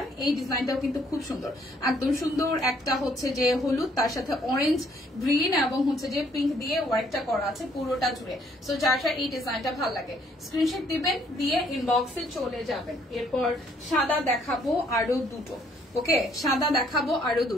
এই ডিজাইনটাও কিন্তু খুব সুন্দর, একদম সুন্দর। একটা হচ্ছে যে হলুদ, তার সাথে অরেঞ্জ, গ্রিন এবং হচ্ছে যে পিঙ্ক দিয়ে ওয়ার্কটা করা আছে পুরোটা জুড়ে। সো যার এই ডিজাইনটা ভালো লাগে স্ক্রিনশট দিবেন, দিয়ে ইনবক্সে চলে যাবেন। এরপর সাদা দেখাবো আরো দুটো, ওকে সাদা দেখাবো আরো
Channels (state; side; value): normal; both; correlation 0.65